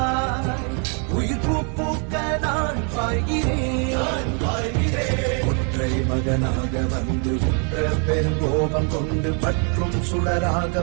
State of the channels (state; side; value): quieter; left; 38.5 dB